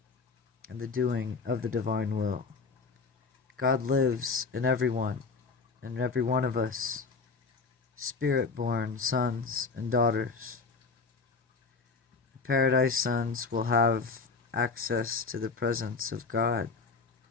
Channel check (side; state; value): right; quieter; 4.6 dB